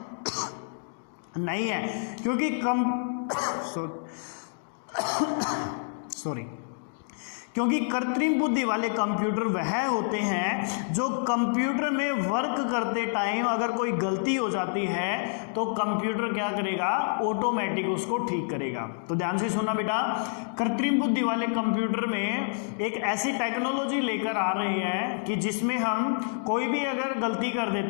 नहीं है, क्योंकि क्योंकि कृत्रिम बुद्धि वाले कंप्यूटर वह होते हैं जो कंप्यूटर में वर्क करते टाइम अगर कोई गलती हो जाती है तो कंप्यूटर क्या करेगा, ऑटोमेटिक उसको ठीक करेगा। तो ध्यान से सुनना बेटा, कृत्रिम बुद्धि वाले कंप्यूटर में एक ऐसी टेक्नोलॉजी लेकर आ रही है कि जिसमें हम कोई भी अगर गलती कर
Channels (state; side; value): silent; right; digital silence